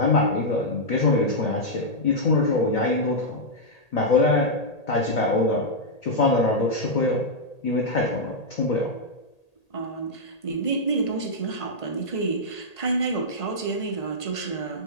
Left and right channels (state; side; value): late; right; 1.8 ms